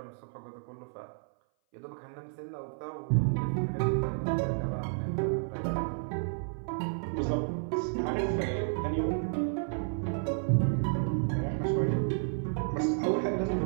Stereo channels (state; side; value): silent; left; 57 dB below the other